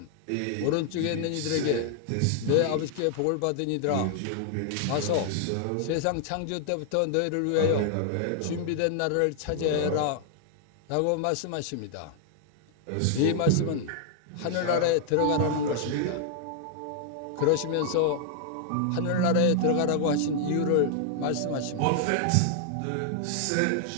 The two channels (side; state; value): both; different; correlation 0.00